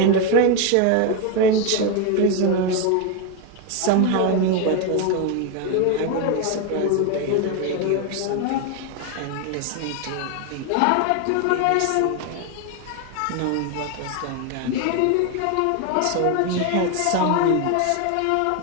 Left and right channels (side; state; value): both; different; correlation 0.01